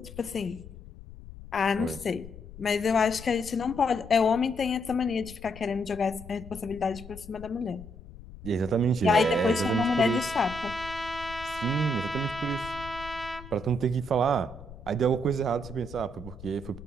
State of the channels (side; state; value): left; noise; rumble, 16 dB below the sound